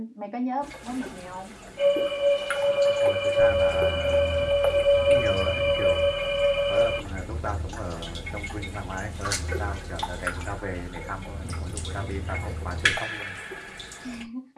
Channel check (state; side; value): identical; both; correlation 1.00